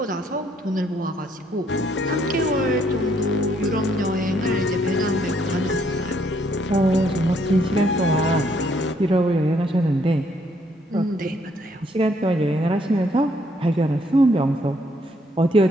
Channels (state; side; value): normal; both; correlation 0.69